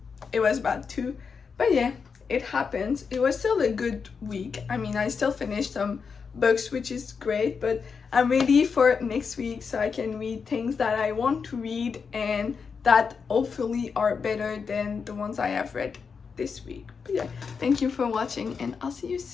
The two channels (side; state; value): right; quieter; 5.7 dB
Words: it was bad too. But yeah, it happens. It was still a good week. I mean, I still finished some books, which is great, but I'm ready for next week so I can read things that I want to read and that hopefully are better than the ones I have read this week. But yeah, thank you for watching and I'll see you